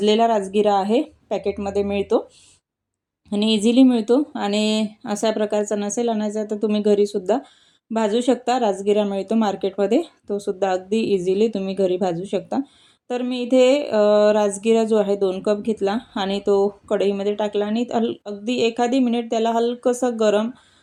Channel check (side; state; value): both; identical; correlation 1.00